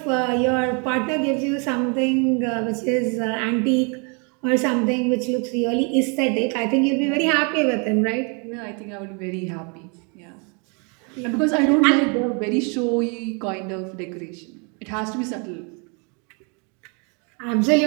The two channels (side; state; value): left; quieter; 35.0 dB